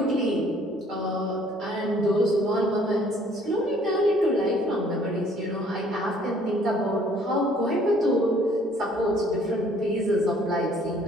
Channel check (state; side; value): normal; both; correlation 0.59